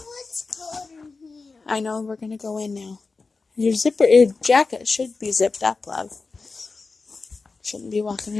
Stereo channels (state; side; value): quieter; right; 4.1 dB